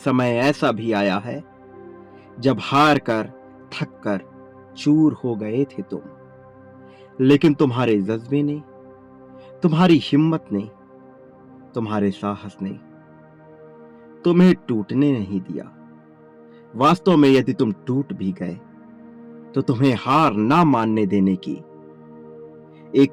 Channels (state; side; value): identical; both; correlation 1.00